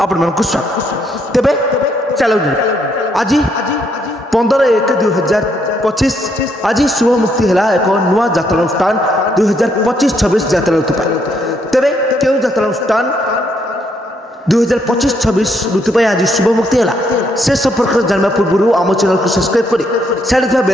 आपण स्वागत। तेबे चलो आज 15/1/2025 आज शुभ मुक्ति है एक नुआ यात्रा अनुष्ठान 2025-26 यात्रा ऋतु। तेबे क्यों यात्रा अनुष्ठान 2025-26 ऋतु आज शुभ मुक्ति है से संपर्क जानवा पूर्व आम चैनल को सब्सक्राइब कर साइड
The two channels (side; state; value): both; normal; correlation 0.73